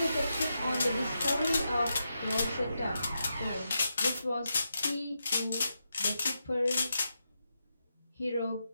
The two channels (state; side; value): inverted; both; correlation -0.86